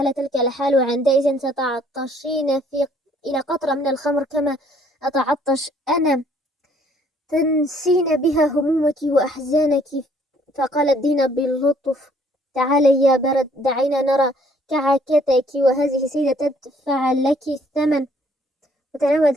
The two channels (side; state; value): both; normal; correlation 0.62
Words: تلك الحال، وعندئذ ستعطشين إلى قطرة من الخمر كما أتعطش أنا، تنسين بها همومك وأحزانك. فقالت دينا بلطف: تعالي يا برد، دعينا نرى كعكتك، وهذه سيدة تدفع لك الثمن.